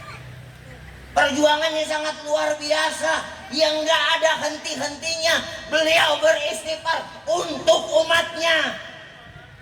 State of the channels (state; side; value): identical; both; correlation 1.00